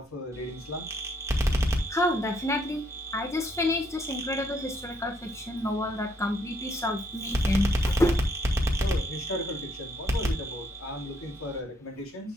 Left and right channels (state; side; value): normal; both; correlation 0.70